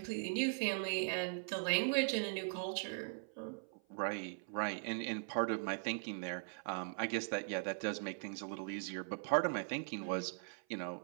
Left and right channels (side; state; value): left; silent; 51 dB below the other